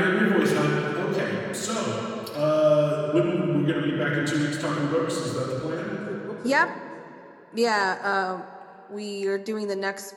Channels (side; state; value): both; identical; correlation 1.00